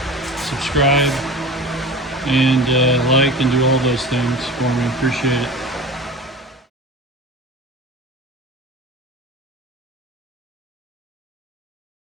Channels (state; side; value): normal; both; correlation 0.35